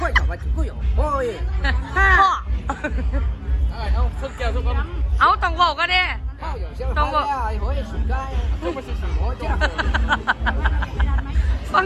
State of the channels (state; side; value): identical; both; correlation 1.00